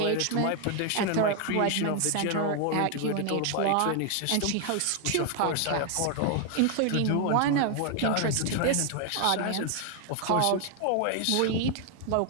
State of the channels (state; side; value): different; both; correlation 0.00